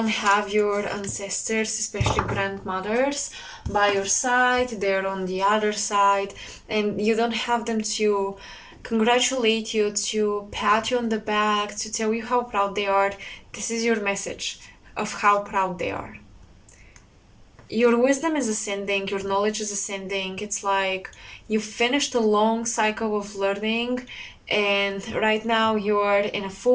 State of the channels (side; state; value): both; identical; correlation 1.00